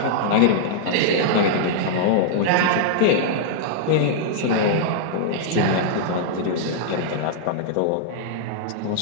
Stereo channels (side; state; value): both; different; correlation -0.02